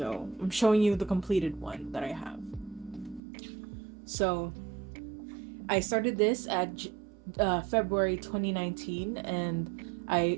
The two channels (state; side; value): drops out; left; at 3.2 s